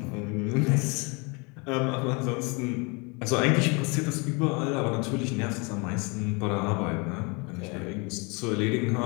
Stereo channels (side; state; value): right; quieter; 30.4 dB